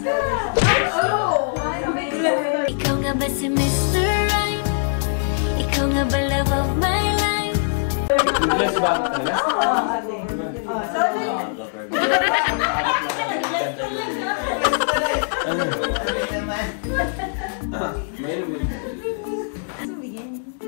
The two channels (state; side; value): silent; right; digital silence